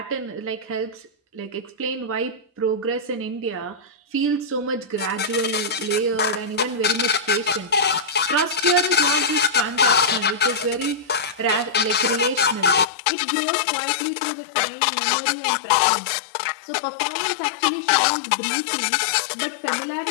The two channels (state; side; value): drops out; right; at 12.9 s